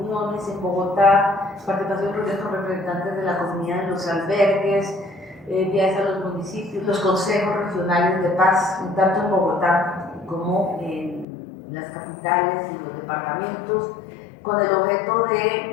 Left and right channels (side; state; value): right; drops out; at 11.2 s